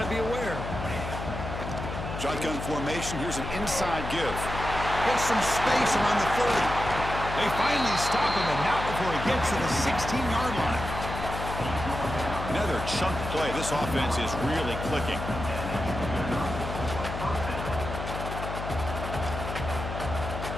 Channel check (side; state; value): left; noise; hum, 6 dB below the sound